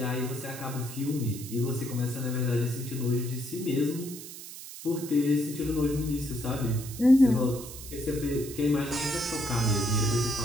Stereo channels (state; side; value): noise; right; hiss, 12 dB below the sound